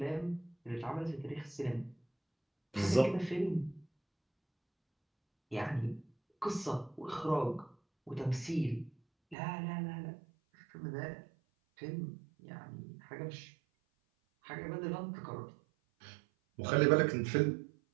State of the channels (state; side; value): drops out; left; at 9.3 s